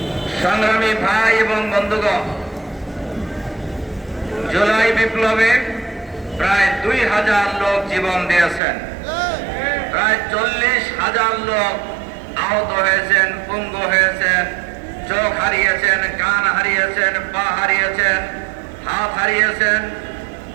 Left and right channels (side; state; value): left; drops out; at 8.6 s